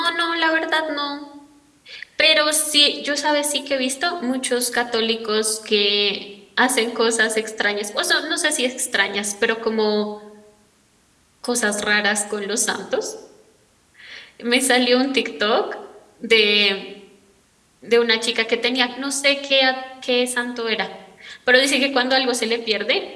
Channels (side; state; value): both; identical; correlation 1.00